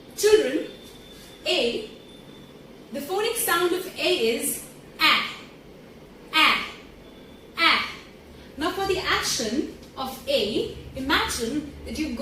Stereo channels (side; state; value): both; identical; correlation 1.00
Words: Children, A, the phonic sound of A is A. Now for the action of A, imagine that you've